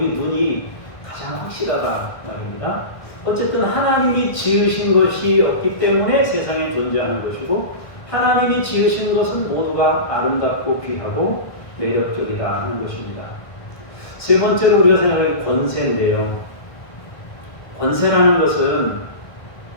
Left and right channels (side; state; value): right; late; 1.6 ms